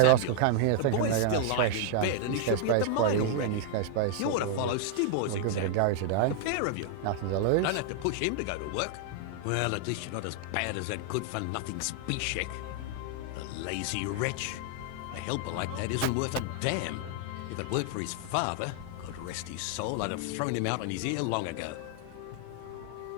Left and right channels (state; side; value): different; both; correlation 0.00